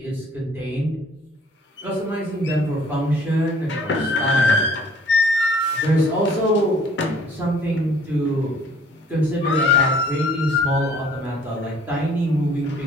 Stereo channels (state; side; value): normal; both; correlation 0.56